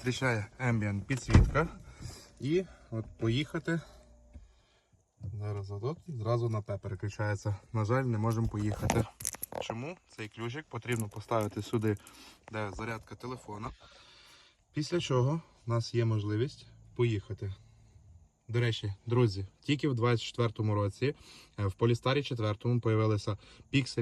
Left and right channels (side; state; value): both; identical; correlation 1.00